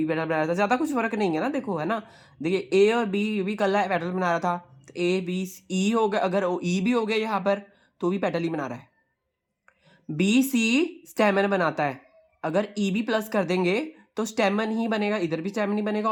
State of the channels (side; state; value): both; identical; correlation 1.00